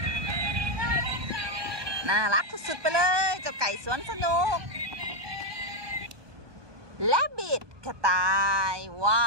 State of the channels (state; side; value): late; left; 1.2 ms